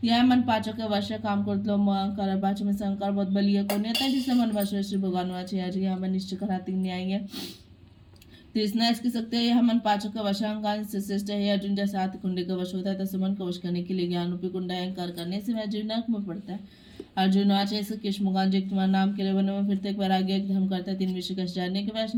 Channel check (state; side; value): identical; both; correlation 1.00